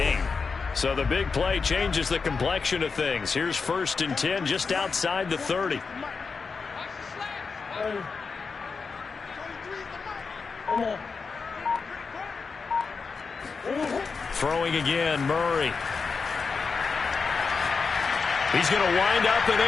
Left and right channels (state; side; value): quieter; right; 4.9 dB